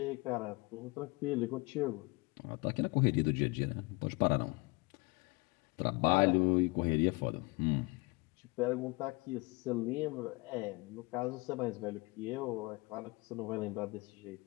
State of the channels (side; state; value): right; quieter; 25.8 dB